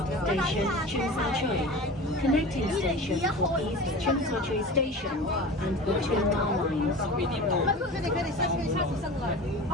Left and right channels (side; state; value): both; normal; correlation 0.34